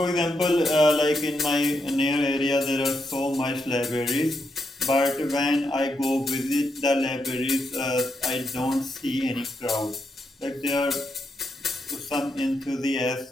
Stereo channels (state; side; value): normal; both; correlation 0.81